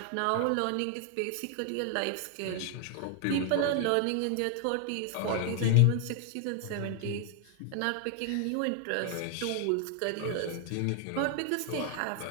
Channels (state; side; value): different; both; correlation 0.00